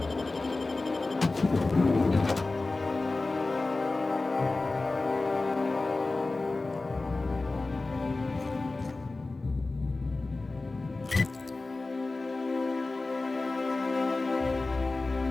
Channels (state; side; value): quieter; right; 3.4 dB